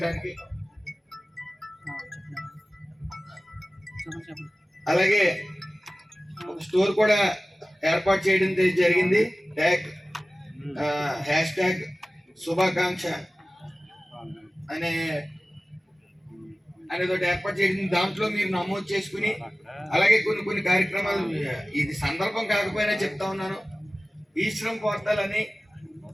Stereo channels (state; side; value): normal; both; correlation 0.97